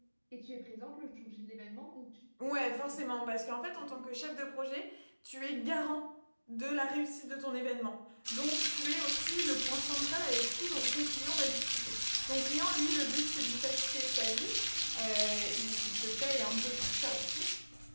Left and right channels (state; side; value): inverted; both; correlation -1.00